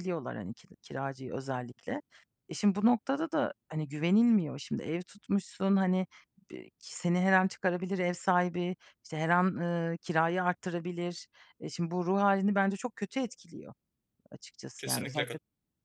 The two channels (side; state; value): both; identical; correlation 1.00